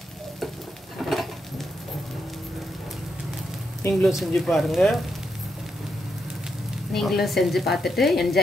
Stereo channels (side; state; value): both; normal; correlation 0.82